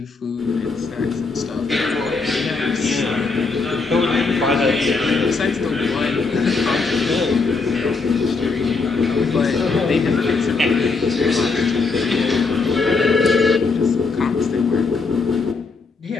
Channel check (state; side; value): quieter; right; 4.2 dB